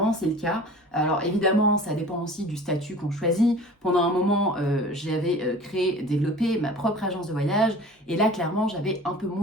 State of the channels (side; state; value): both; normal; correlation 0.42